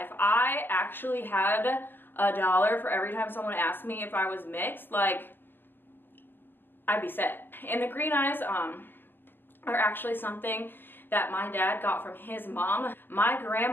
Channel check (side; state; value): right; late; 0.097 ms